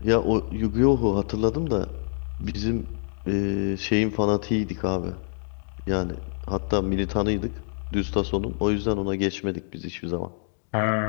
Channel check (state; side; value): silent; right; 57 dB below the other